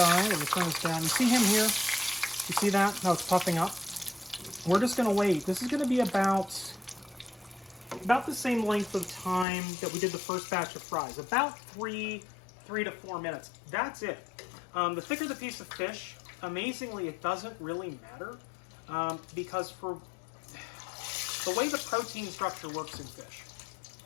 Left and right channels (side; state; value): right; drops out; at 9.5 s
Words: let me turn this down. You see him here? You see that? How it's puffing up? We're just going to wait. This is going to be about the same length of time that we did the first batch of fries. About 3 to 4 minutes. That's it. The thicker the piece of fish, amazingly, it doesn't really matter because for the way the protein structure works in fish,